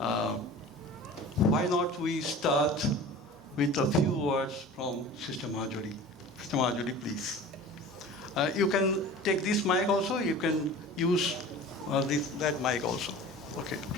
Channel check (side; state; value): both; normal; correlation 0.39